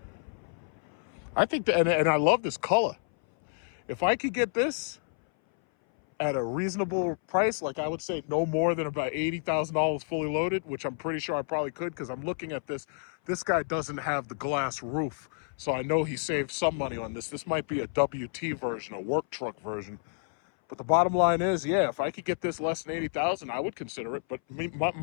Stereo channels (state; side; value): silent; right; 58 dB below the other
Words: I think that, and I love this color. If I could get this at a reasonable price, like I would say no more than about $80,000 fully loaded, which I'm pretty sure I probably could, because I'm looking at this. This guy doesn't have the glass roof, so I know he saved some money on this. This might be a WT version, a work truck version. But the bottom line is, yeah, if I could get this less than $80,000, I would consider it. But